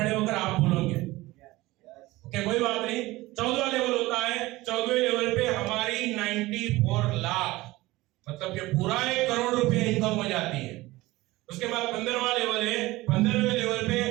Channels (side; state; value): left; quieter; 19.3 dB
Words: होकर आप बोलोगे, ओके कोई बात नहीं। 14वां लेवल होता है। 14वें लेवल पे हमारी 94 लाख, मतलब कि पूरा 1 करोड़ रुपए इनकम हो जाती है। उसके बाद 15वां लेवल है। 15वें लेवल पे